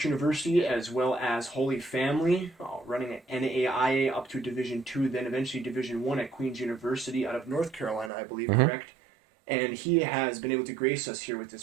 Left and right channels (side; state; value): left; drops out; at 8.1 s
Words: University, as well as Holy Family, running at NAIA up to Division II, then eventually Division I at Queen's University out of North Carolina, I believe, correct? And he has been able to grace us here with his